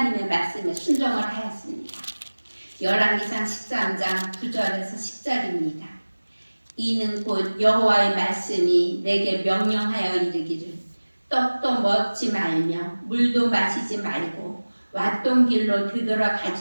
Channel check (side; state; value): both; inverted; correlation -1.00